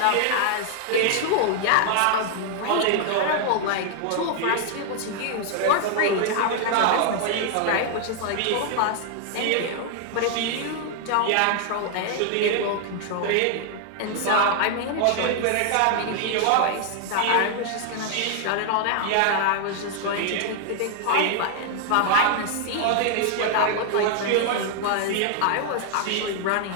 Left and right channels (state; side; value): different; both; correlation 0.00